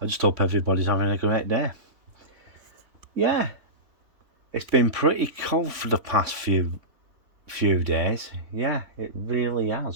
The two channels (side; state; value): left; late; 3.6 ms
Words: I just hope everybody's having a great day. Yeah, it's been pretty cold for the past few days. Yeah, it really